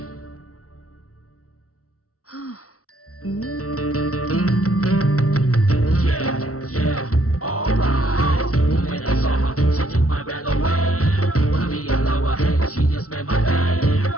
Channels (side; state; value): right; late; 0.65 ms